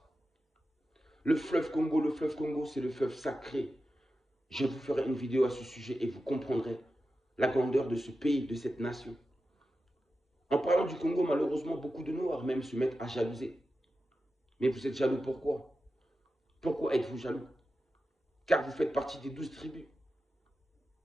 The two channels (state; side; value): normal; both; correlation 0.92